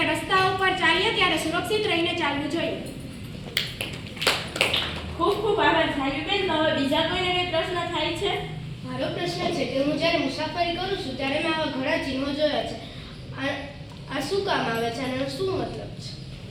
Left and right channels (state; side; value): identical; both; correlation 1.00